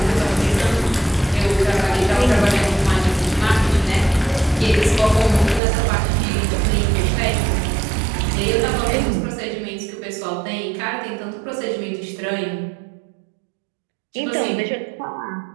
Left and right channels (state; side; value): drops out; left; at 5.6 s